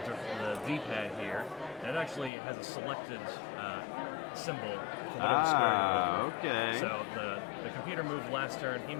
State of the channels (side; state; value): right; drops out; at 2.3 s